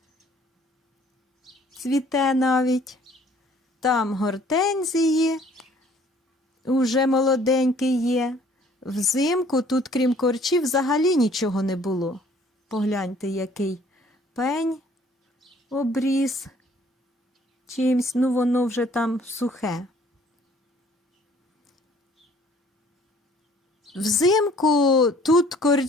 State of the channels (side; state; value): both; normal; correlation 0.57